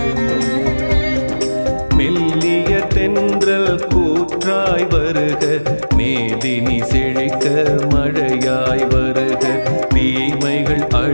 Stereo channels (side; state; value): both; inverted; correlation -1.00